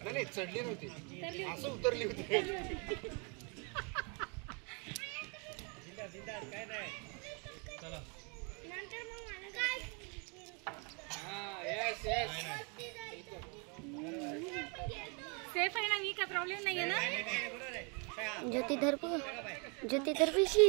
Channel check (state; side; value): quieter; left; 34.9 dB